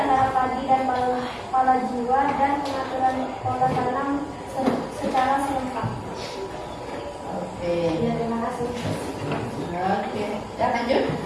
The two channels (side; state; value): both; identical; correlation 1.00